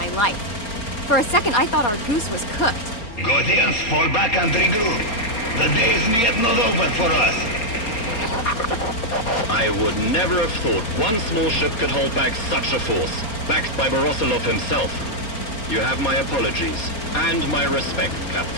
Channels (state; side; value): late; right; 4.5 ms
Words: life. For a second, I thought our goose was cooked. Gothians, fall back and regroup. The day is yet not over for us. I would never have thought one small ship could hold back such a force, backed by Borosilov himself. You have my apologies, and my respect,